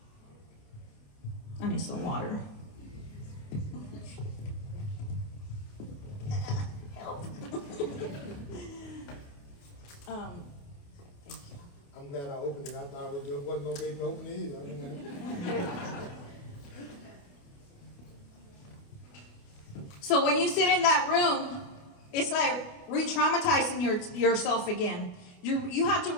I need some water. Help. Thank you. I'm glad I opened it. I thought it wasn't gonna be able to open it either. So when you sit in that room, it's like re-traumatizing yourself again. You have to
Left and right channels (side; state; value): right; late; 28 ms